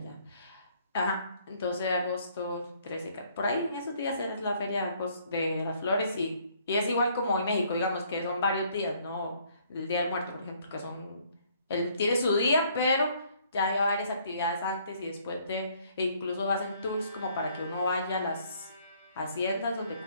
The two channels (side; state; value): both; inverted; correlation -0.63